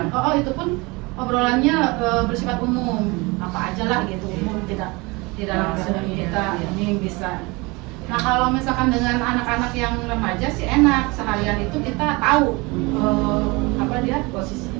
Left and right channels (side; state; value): left; quieter; 25.3 dB